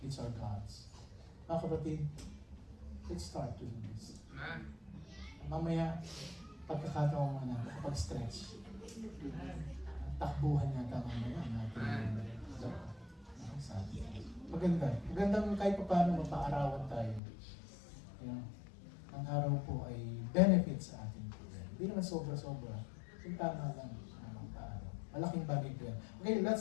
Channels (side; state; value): right; drops out; at 17.2 s